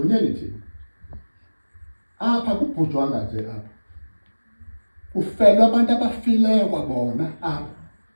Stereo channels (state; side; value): inverted; both; correlation -1.00